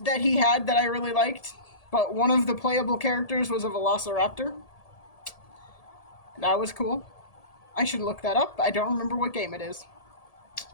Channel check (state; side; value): late; right; 1.7 ms